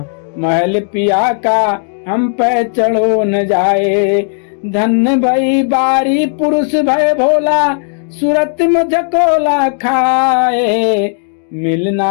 महल पिया का हम पे चढ़ो न जाए। धन्य भई बारी पुरुष भय भोला सूरत में झकोला खाए।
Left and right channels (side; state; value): right; silent; 67 dB below the other